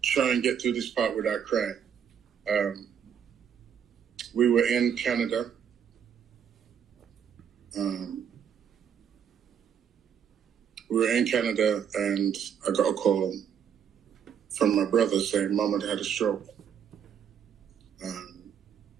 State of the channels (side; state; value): left; quieter; 8.0 dB